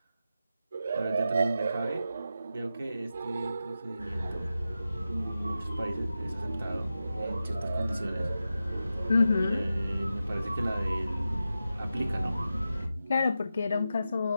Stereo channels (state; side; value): inverted; both; correlation -0.91